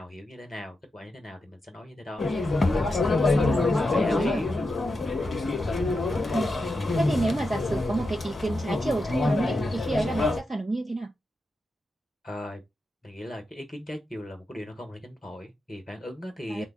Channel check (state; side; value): normal; both; correlation 0.88